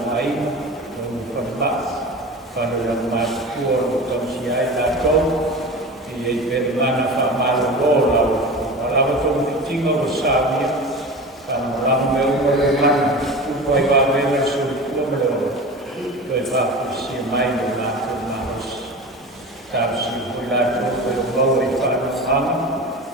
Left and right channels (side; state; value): both; normal; correlation 0.32